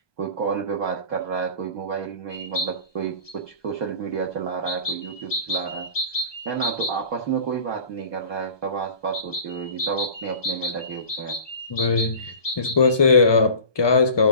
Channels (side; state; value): right; late; 1.2 ms